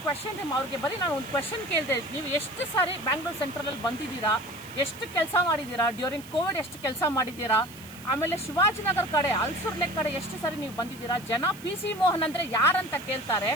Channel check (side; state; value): right; noise; hiss, 19 dB below the sound